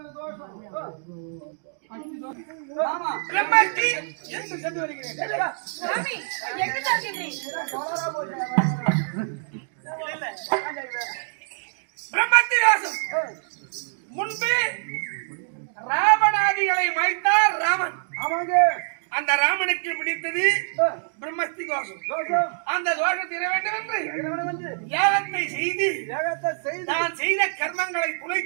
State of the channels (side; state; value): left; silent; digital silence